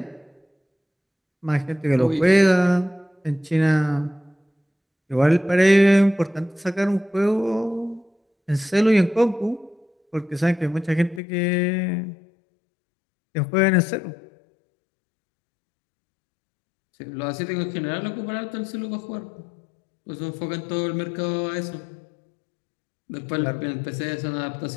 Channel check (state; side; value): drops out; right; at 11.2 s